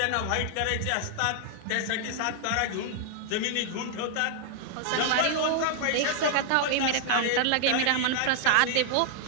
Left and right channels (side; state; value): both; different; correlation 0.00